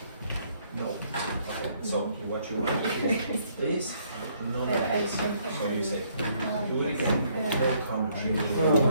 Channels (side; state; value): both; inverted; correlation -0.68